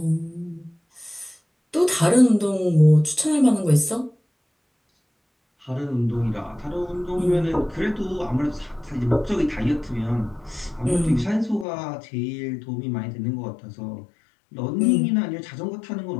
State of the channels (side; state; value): right; drops out; at 11.7 s